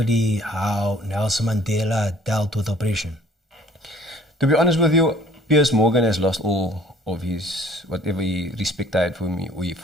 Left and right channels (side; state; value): both; normal; correlation 0.54